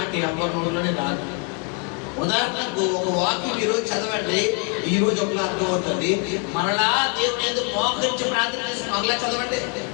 ఎవరి నోట్లోనే రాదు. ఉదాహరణకు ఒక వాక్యం ఈరోజు చదవండి, ఈ రోజు ఒక అర్థం అవుతుంది. మరలా దేవుని ఎందుకు మోకరించి ప్రార్థన చేసి మరలా చదవండి,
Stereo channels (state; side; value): quieter; right; 37.8 dB